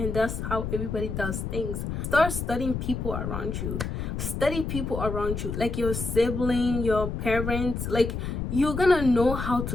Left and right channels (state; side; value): noise; left; rumble, 4 dB below the sound